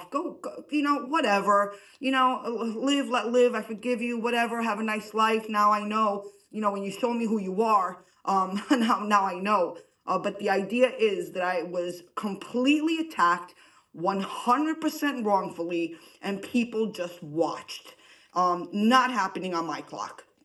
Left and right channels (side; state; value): both; identical; correlation 1.00